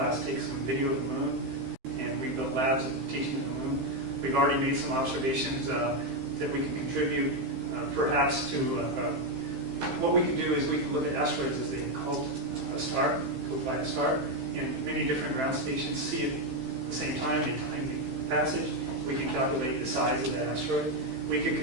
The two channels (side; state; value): left; late; 15 ms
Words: take some video of the moon, and we built labs teaching the moon. We've already made some observations that we can contribute, perhaps to what we can do is we can look at asteroids as they called a star, go by a star, in many different ground stations, see it at the same time, they time the passage. We can calculate the size of that asteroid. We could